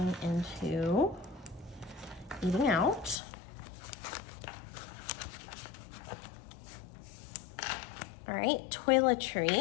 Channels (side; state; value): right; drops out; at 3.2 s